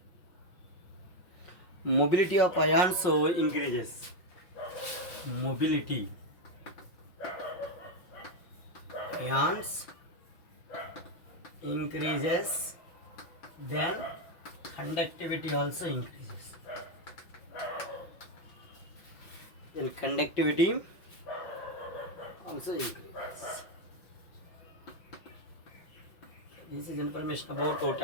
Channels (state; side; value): late; right; 5.9 ms